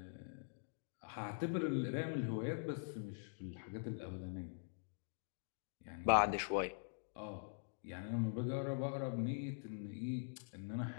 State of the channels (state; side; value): silent; right; digital silence